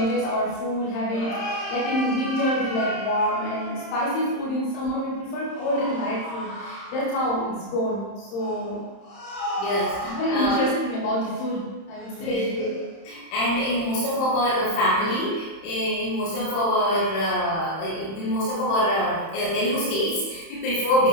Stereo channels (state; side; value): late; right; 30 ms